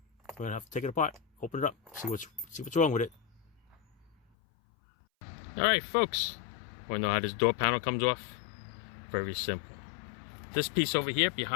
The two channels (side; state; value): right; drops out; at 4.2 s